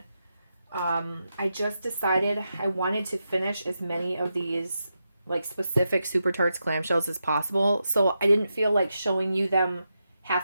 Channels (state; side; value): inverted; both; correlation -0.87